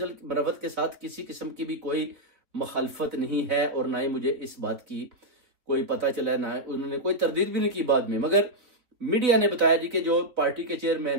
मरवत के साथ किसी किस्म की भी कोई मुखालफत नहीं है और ना ही मुझे इस बात की कोई पता चला, ना उन्होंने कोई तरदीद भी नहीं की बाद में। मगर मीडिया ने बताया जी कि जो पार्टी के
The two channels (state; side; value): late; left; 4.0 ms